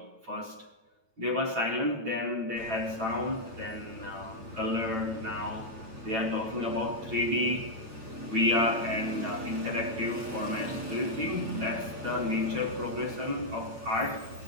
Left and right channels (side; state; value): left; late; 9.0 ms